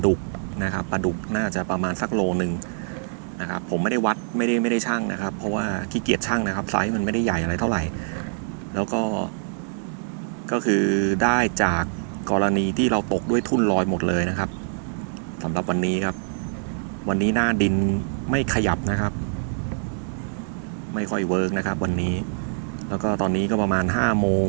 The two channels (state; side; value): silent; left; 62 dB below the other